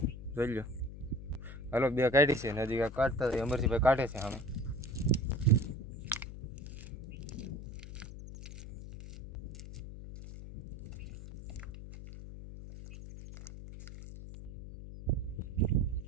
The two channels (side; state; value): left; noise; hum, 11 dB below the sound